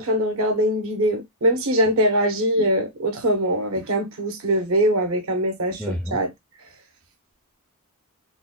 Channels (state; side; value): normal; both; correlation -0.20